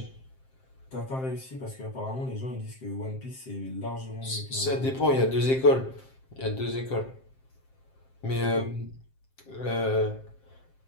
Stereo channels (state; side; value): late; right; 7.6 ms